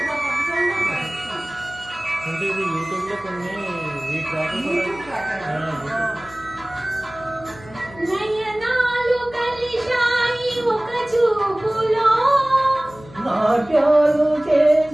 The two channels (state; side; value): noise; left; hum, 20 dB below the sound